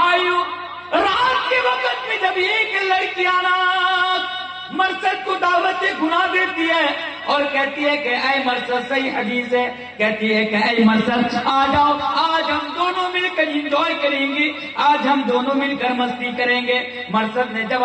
رات کے وقت میں جب ایک لڑکی مرصد کو دعوت گناہ دیتی ہے اور کہتی ہے کہ اے مرصد، صحیح حدیث ہے، کہتی ہے کہ اے مرصد آ جاؤ، آج ہم دونوں مل کر انجوائے کریں گے، آج ہم دونوں مل کر مستی کریں گے۔ مرصد نے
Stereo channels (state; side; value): identical; both; correlation 1.00